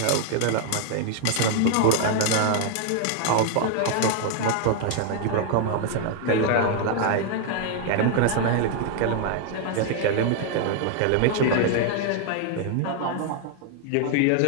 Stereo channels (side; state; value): both; different; correlation 0.00